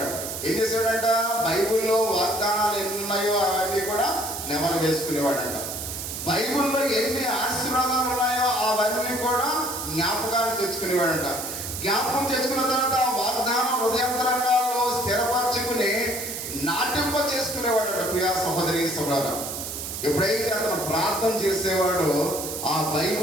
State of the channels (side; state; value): right; noise; hiss, 6 dB below the sound